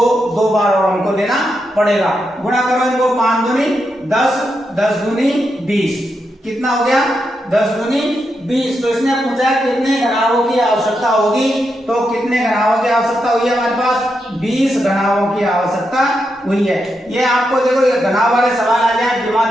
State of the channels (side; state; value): both; normal; correlation 0.84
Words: बार और हमको देना पड़ेगा। गुणा करो इनको, 5 दूनी 10, 10 दूनी 20, कितना हो गया? 10 दूनी 20। तो इसने पूछा कितने घनाभों की आवश्यकता होगी, तो कितने घनाभों की आवश्यकता हुई है हमारे पास? 20 घनाभों की आवश्यकता हुई है। ये आपको देखो ये घनाभ वाले सवाल आ जाए,